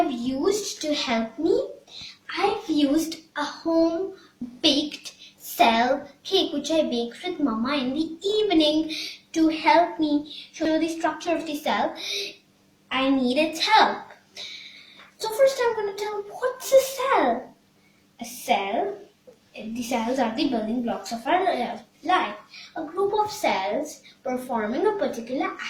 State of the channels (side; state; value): both; identical; correlation 1.00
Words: used to help me? I've used a home baked cell cake which I baked with Mama in the evening to help me show the structure of the cell. I need its help. So first I'm going to tell what's a cell. A cell, the cells are the building blocks of our life. A group of cells performing a particular